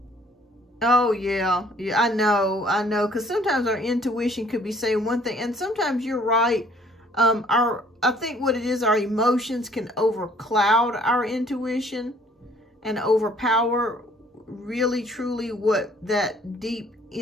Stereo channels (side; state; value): both; normal; correlation 0.58